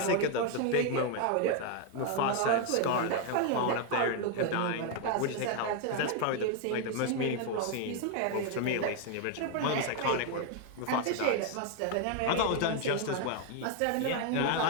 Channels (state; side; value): different; both; correlation 0.01